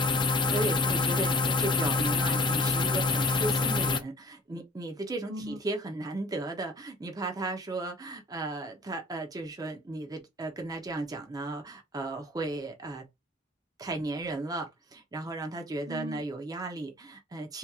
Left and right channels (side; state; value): both; normal; correlation 0.50